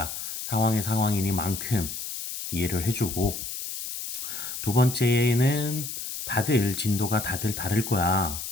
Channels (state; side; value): noise; left; hiss, 7 dB below the sound